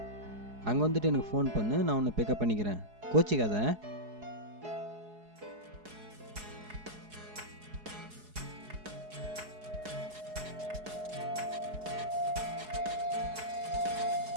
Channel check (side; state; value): left; late; 4.7 ms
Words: அங்கே வந்துட்டு எனக்கு ஃபோன் பண்ணு, நான் உன்னை பிக்கப் பண்ணிக்கிறேன். கோச்சிக்காத.